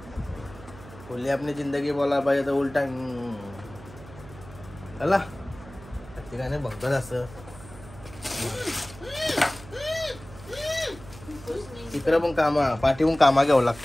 खुली अपनी जिंदगी बोला पाहिजे तर उलटा चला ठिकाणी बघतात असं. तिकडं पण कामा पाठीहून कामा घ्यावं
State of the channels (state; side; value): noise; right; hum, 18 dB below the sound